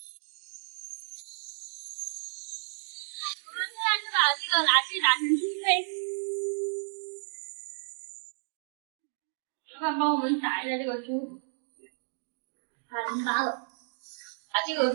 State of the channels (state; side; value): silent; left; digital silence